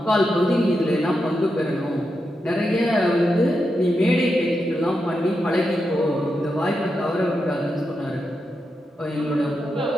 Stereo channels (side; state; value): both; normal; correlation 0.86